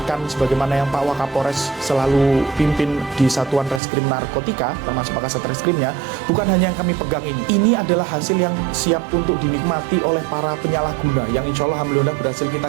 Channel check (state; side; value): drops out; left; at 3.8 s